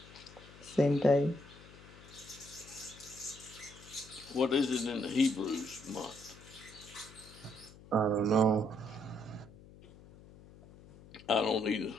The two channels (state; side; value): noise; left; hum, 20 dB below the sound